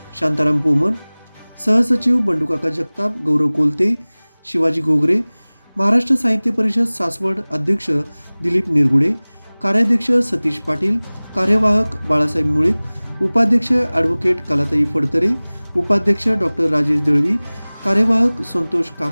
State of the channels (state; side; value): inverted; both; correlation -1.00